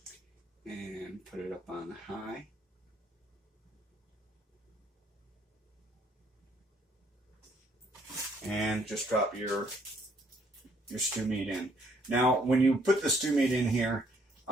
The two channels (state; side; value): normal; both; correlation 0.66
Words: and put it up on high. And just drop your stew meat in. Now, when you put the stew meat in here,